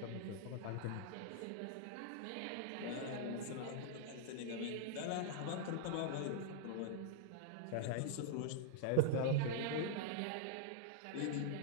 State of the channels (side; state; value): both; different; correlation -0.01